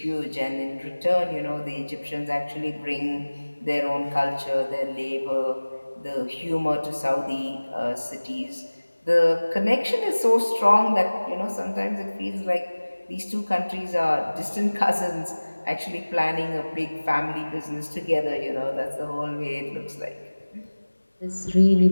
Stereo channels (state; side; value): inverted; both; correlation -1.00